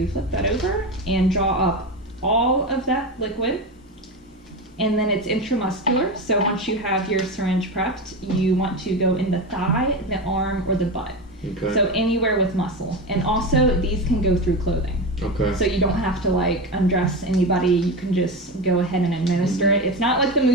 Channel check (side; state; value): both; normal; correlation 0.20